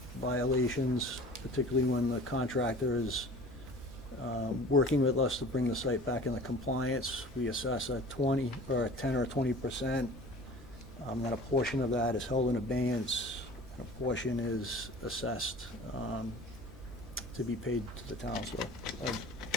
violations, particularly when the contractor is working with us to bring the site back into compliance, we assess a 10 or 20%. Then a portion of that is held in abeyance, and a portion is assessed to be paid to the town. So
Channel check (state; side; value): normal; both; correlation 0.43